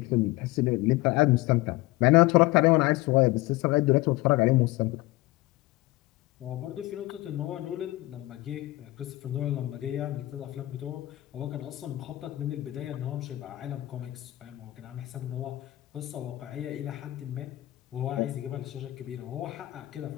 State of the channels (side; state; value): right; quieter; 18.8 dB